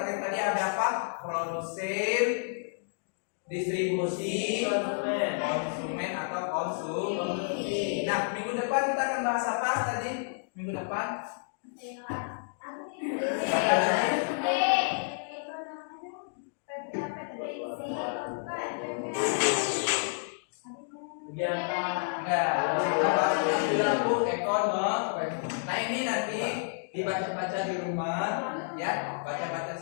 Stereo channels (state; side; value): silent; right; digital silence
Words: tadi ada apa? Produsen, distribusi, konsumen atau konsumsi. Nah, minggu depan kita akan bahas apa tadi? Minggu depan? Nah, ini nanti dibaca-baca di rumah, ya, baca-baca